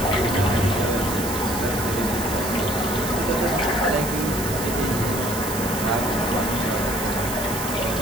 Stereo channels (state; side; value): noise; right; hiss, 7 dB below the sound